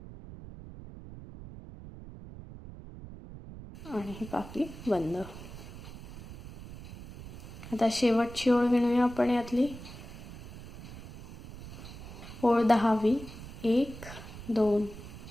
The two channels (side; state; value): right; noise; rumble, 14 dB below the sound